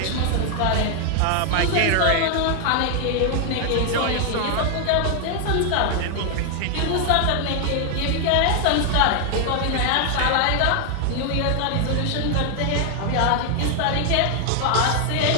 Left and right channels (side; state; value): both; different; correlation 0.00